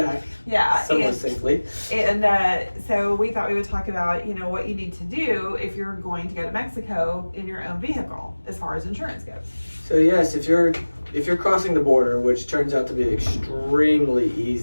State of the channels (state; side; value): inverted; both; correlation -1.00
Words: yeah, somewhat and, safely. and so we thought we would talk about what you need to do if you're going to go to Mexico in your own vehicle as far as insurance goes. So yes, if you're crossing the border, which turns out to be extremely